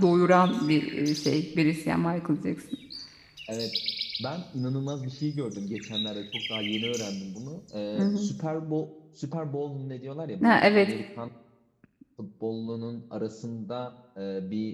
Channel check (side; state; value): both; identical; correlation 1.00